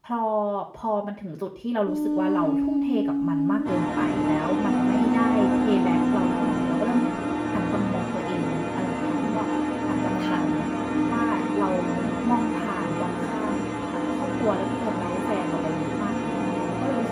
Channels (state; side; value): identical; both; correlation 1.00